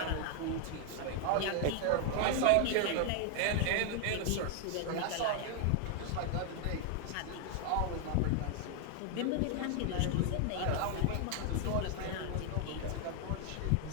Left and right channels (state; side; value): different; both; correlation 0.00